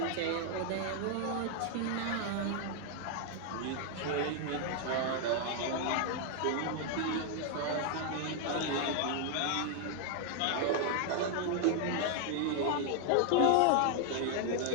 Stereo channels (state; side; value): different; both; correlation 0.00